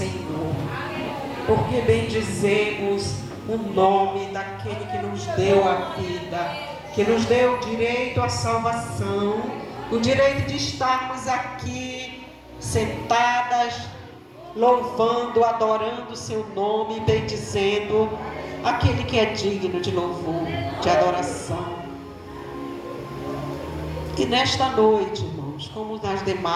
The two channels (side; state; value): both; identical; correlation 1.00